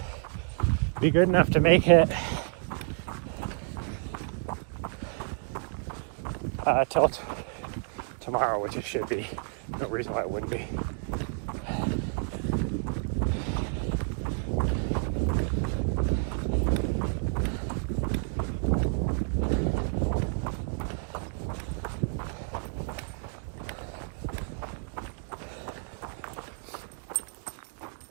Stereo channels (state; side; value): silent; left; 58 dB below the other